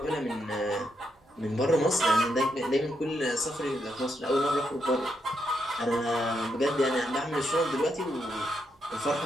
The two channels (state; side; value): normal; both; correlation 0.80